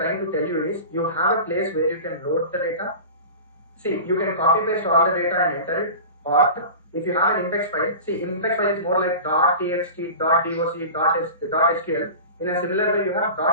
to tell you is, you have a place where you can load the data. See, you can copy paste all the data and enter it, or if you have an index file, see, index file is more like .txt, .doc, .sql. In a similar way, you have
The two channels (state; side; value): inverted; both; correlation -0.34